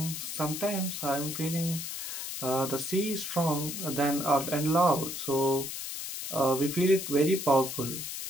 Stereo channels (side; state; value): left; noise; hiss, 6 dB below the sound